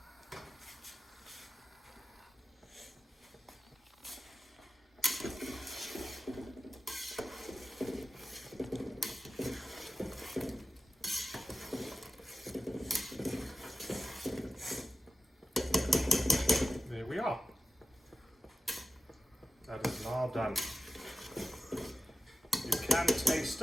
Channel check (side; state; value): both; normal; correlation 0.93